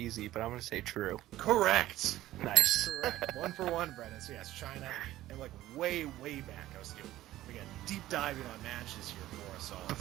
but I'm going to say true. Correct. Nice. Correct. 1 for 1, Brennan. So yes, China, and like way back, I was doing, again, deep diving on matches here for us all.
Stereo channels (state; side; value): quieter; left; 15.0 dB